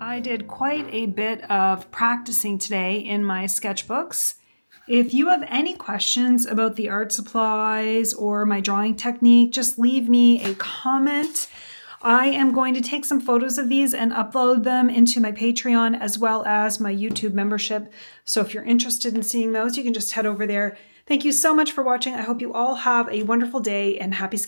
I did quite a bit of practicing today in my sketchbooks. If you have any questions about the art supplies or my drawing technique, just leave me a comment. I am going to take some photos of these and upload them into my Patreon as well as my YouTube membership. So if you're interested in seeing those, you can just head over there. Thank you so much for watching. I hope you all have a wonderful day and happy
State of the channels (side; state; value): both; inverted; correlation -1.00